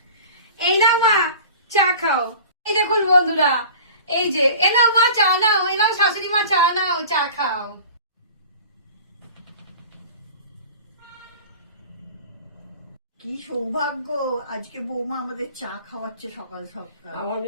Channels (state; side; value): inverted; both; correlation -0.41